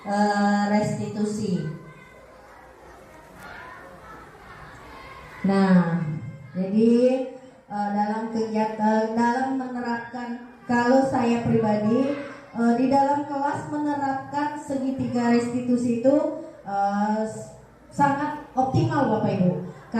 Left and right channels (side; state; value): both; identical; correlation 1.00